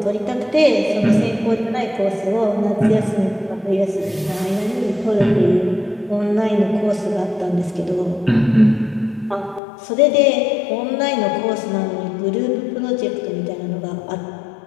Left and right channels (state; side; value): drops out; right; at 9.6 s